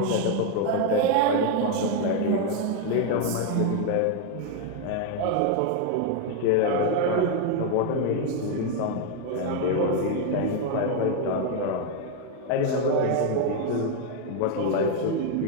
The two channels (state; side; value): different; both; correlation 0.01